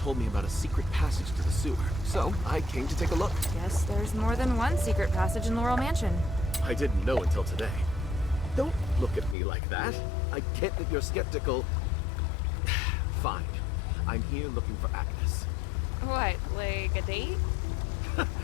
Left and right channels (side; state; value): right; drops out; at 9.3 s